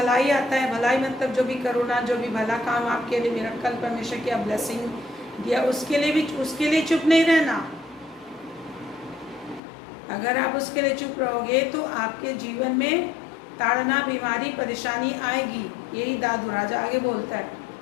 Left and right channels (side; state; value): right; drops out; at 9.6 s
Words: आता है, भलाई मतलब जो भी करुणा, जो भी भला काम आपके लिए, मिरेकल परमेश्वर की ब्लेसिंग दिया, उसके लिए चुप नहीं रहना। अगर आप उसके लिए चुप रहोगे तो आपके जीवन में ताड़ना, बीमारी, परेशानी आएगी। यही दाऊद राजा आगे बोलता है।